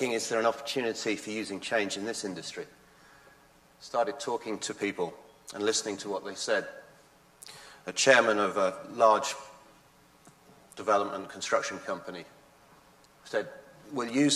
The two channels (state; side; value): identical; both; correlation 1.00